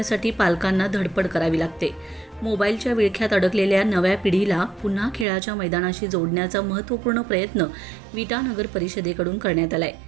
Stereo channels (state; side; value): drops out; left; at 5.2 s